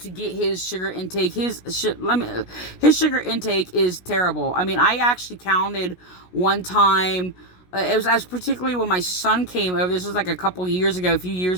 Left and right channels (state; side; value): late; right; 16 ms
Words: get his sugar intake, his sugar intake is terrible. I mean, I actually counted one time. It was as particularly when my son came over. This was like a few